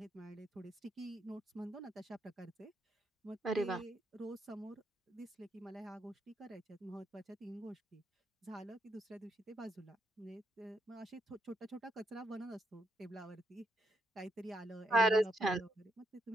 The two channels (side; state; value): both; normal; correlation 0.78